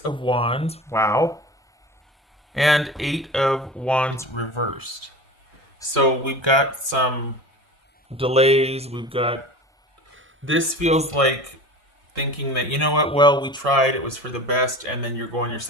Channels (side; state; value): both; normal; correlation 0.35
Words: Wands. Wow. And 8 of Wands reversed. So we've got some delays. This feels like thinking that, you know what, well, we tried, it was for the best, and then you're going your